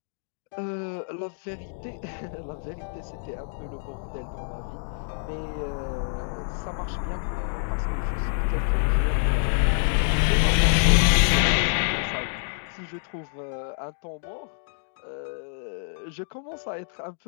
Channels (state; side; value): silent; right; digital silence